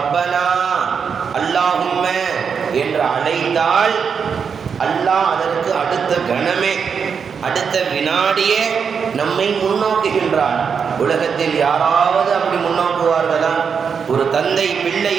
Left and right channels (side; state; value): left; quieter; 6.4 dB